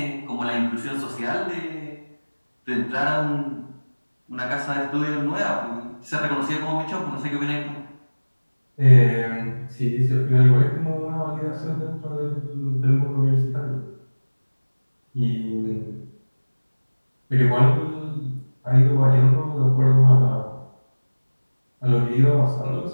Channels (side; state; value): both; inverted; correlation -1.00